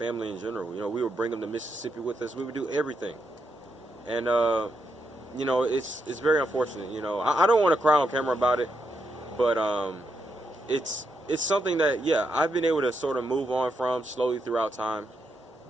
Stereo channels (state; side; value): normal; both; correlation 0.81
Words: in general. We would bring him to Mississippi with us. We would do everything. And, it's very unfortunate. I don't want to cry on camera about it, but it's something that, yeah, I've been able to sort of move on from slowly throughout time.